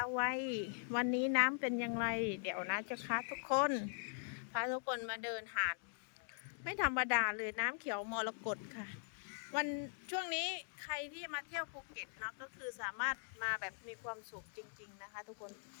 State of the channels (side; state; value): right; silent; digital silence